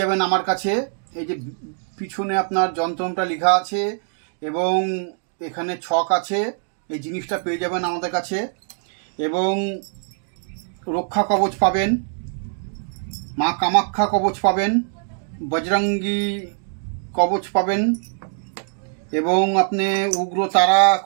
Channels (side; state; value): left; silent; digital silence